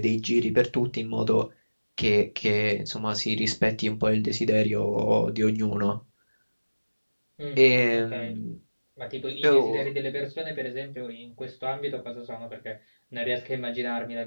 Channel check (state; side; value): inverted; both; correlation -1.00